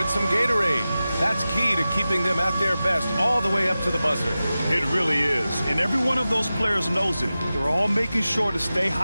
some Gatorade. That's key to keeping them at their best all the way up to the buzzer. It really is. And every one of those players knows it. They're all making sure to stay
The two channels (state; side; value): inverted; both; correlation -0.95